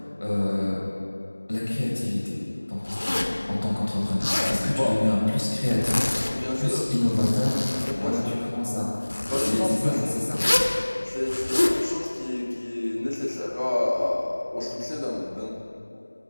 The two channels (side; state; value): both; inverted; correlation -1.00